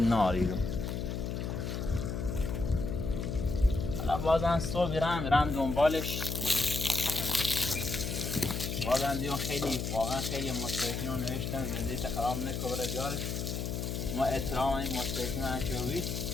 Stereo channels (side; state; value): left; noise; hum, 3 dB below the sound